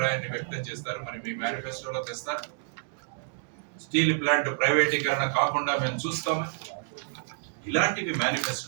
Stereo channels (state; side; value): silent; left; digital silence